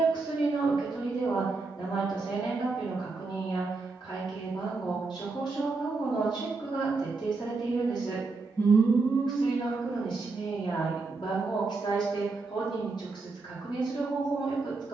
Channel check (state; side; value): quieter; left; 3.9 dB